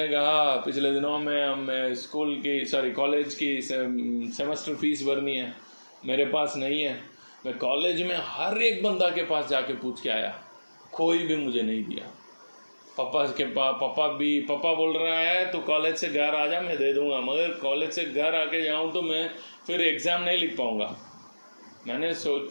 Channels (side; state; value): both; inverted; correlation -1.00